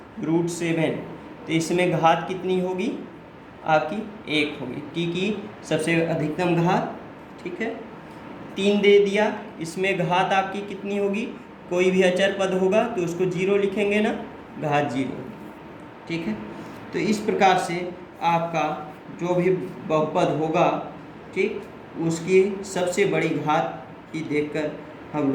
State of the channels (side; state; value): both; identical; correlation 1.00